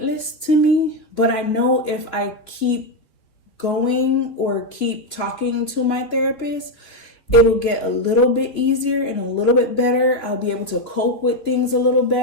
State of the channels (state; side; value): late; right; 3.2 ms